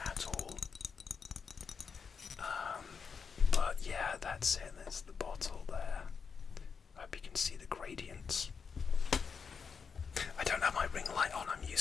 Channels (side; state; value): right; quieter; 5.9 dB